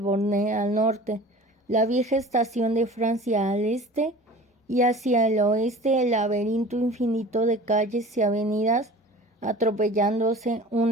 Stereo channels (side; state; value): both; normal; correlation 0.41